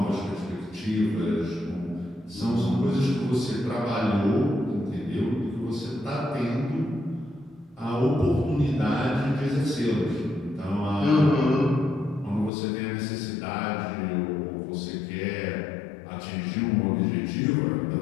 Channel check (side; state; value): right; drops out; at 12.5 s